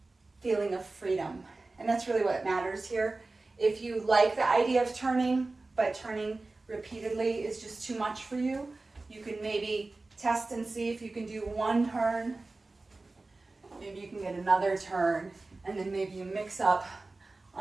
feeling of freedom. And that's really what matters here. If you like the idea of turning, but turning repeatedly is just too much for you, you can maybe test and see if you can do one turn. Maybe you can get another turn, and then maybe you mix up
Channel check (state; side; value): quieter; left; 3.3 dB